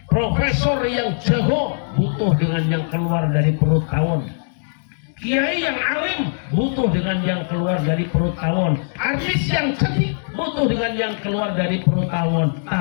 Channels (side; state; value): right; silent; digital silence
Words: Profesor yang jago butuh dengan yang keluar dari perut tawon. Kiai yang alim butuh dengan yang keluar dari perut tawon. Artis yang cantik butuh dengan yang keluar dari perut tawon.